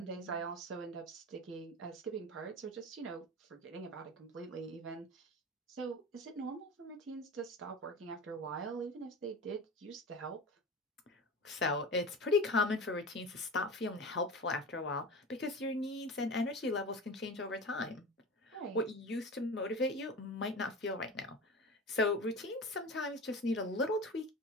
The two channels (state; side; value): normal; both; correlation 0.31